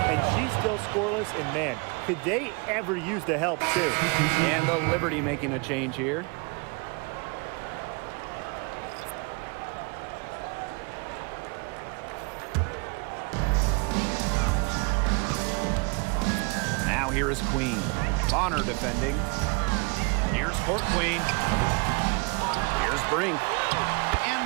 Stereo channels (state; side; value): quieter; left; 30.9 dB